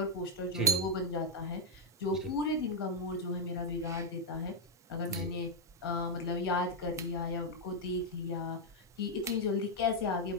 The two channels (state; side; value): normal; both; correlation -0.04